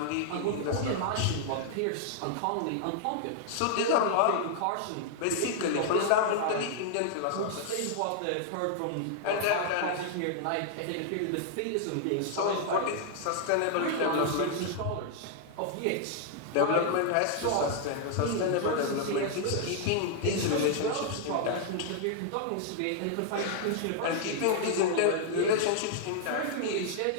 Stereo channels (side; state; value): both; different; correlation -0.01